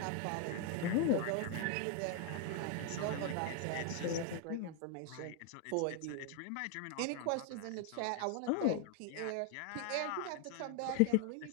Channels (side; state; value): both; different; correlation 0.00